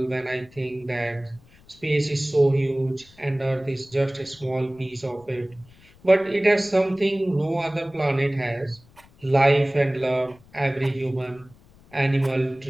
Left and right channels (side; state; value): left; noise; rumble, 27 dB below the sound